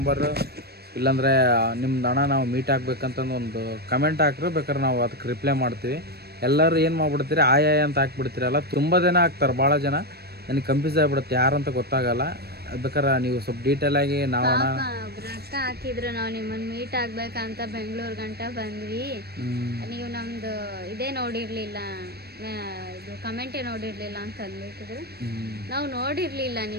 ಇಲ್ಲಾಂದರೆ ನಿಮ್ದು ಹಣ ನಾವು ಮೀಟ್ ಆಗ್ಬೇಕಂತಂದು ಒಂದು ಕಮೆಂಟ್ ಹಾಕ್ರೆ ಬೇಕಾದ್ರೆ ನಾವು ಅದಕ್ಕೆ ರಿಪ್ಲೈ ಮಾಡ್ತೀವಿ. ಎಲ್ಲರೂ ಏನು ಮಾಡ್ಬಿಡ್ತೀರಿ ಆಯಾ ಅಂತ ಹಾಕ್ಬಿಡ್ತೀರಲ್ಲ, ತುಂಬ ಜನ ಹಾಕ್ತಾರೆ. ಭಾಳ ಜನ ನನಗೆ ಕನ್ಫ್ಯೂಸ್ ಆಗಿಬಿಡುತ್ತೆ ಯಾರಂತ ಗೊತ್ತಾಗಲ್ಲ. ಬೇಕಾರೆ ನೀವು ಸ್ವಲ್ಪ ಡೀಟೇಲಾಗಿ ನಾವು ಅಕ್ಕ ಹಾಕಿದ್ರು, ನಾವು ನಿಮ್ಮನ್ನು ಮೀಟ್ ಆಗ್ಬೇಕಂತ ಬೆಂಗಳೂರು ಗಂಟ ಬಂದ್ವಿ, ನೀವು ನಮ್ದು ಇದೇ ನೋಡಿರ್ಲಿಲ್ಲ, ಇದು ಕಮೆಂಟೇ ನೋಡಿರ್ಲಿಲ್ಲ ಅಂತ ಅಂದ್ಬಿಟ್ಟಿದ್ರು. ನಾವು ನೋಡಿರ್ಲಿಲ್ಲ,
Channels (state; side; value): late; left; 0.47 ms